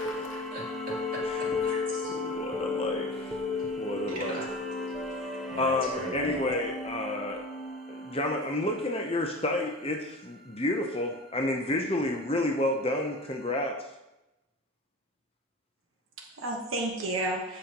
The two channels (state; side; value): normal; both; correlation 0.34